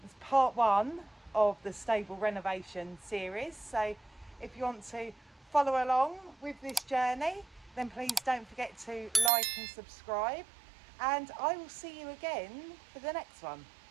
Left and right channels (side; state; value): left; drops out; at 9.3 s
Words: It's part 1 of the stable renovation series, so if you want to follow along with this journey, then please don't forget to like and subscribe, and I will see you again for the next one.